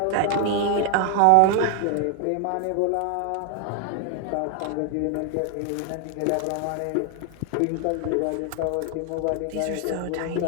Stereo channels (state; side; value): different; both; correlation 0.00